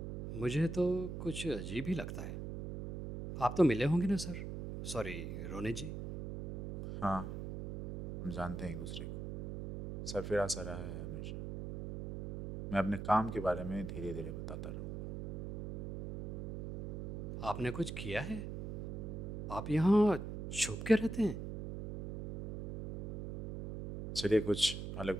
मुझे तो कुछ अजीब ही लगता है। आप तो मिले होंगे ना सर? सॉरी रोनी जी। हाँ, हम जानते हैं एक दूसरे को। सरफिरा सा रहा है हमेशा। मैं अपने काम के बारे में धीरे धीरे बताता रहूँगा। आपने कुछ किया है? आप यहाँ छुप के रहते हैं? चलिए कुछ अलग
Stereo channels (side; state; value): right; noise; hum, 7 dB below the sound